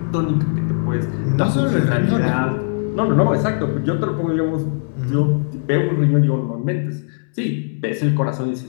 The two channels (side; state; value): right; silent; 66 dB below the other